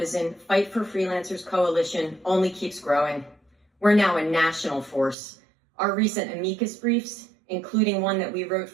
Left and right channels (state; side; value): drops out; left; at 5.2 s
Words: Fight for Freelancers coalition only keeps growing. We're now a national force. Our recent amicus briefs, including one that we wrote